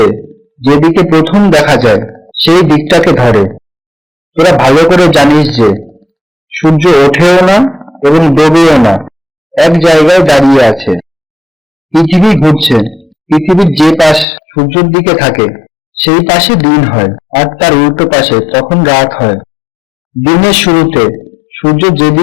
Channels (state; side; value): drops out; right; at 14.2 s